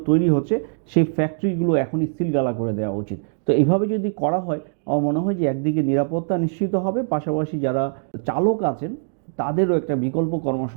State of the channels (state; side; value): silent; left; 64 dB below the other